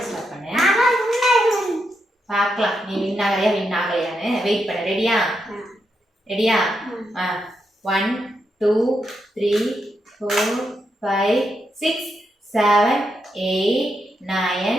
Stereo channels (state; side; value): normal; both; correlation 0.83